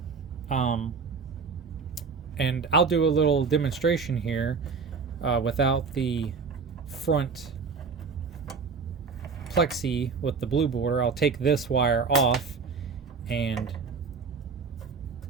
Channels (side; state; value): left; quieter; 5.1 dB